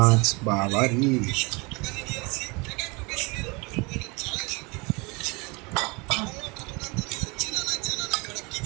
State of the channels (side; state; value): left; quieter; 27.9 dB